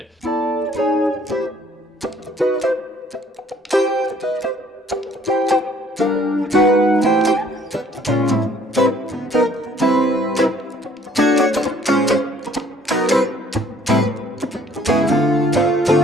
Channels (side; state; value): both; normal; correlation 0.59